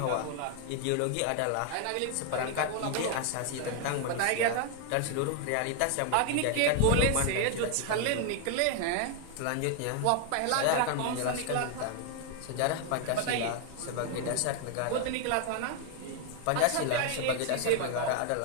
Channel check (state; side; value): different; both; correlation 0.00